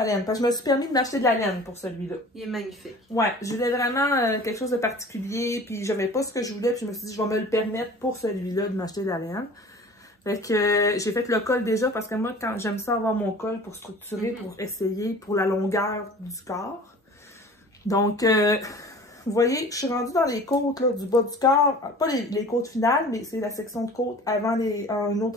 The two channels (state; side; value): normal; both; correlation 0.44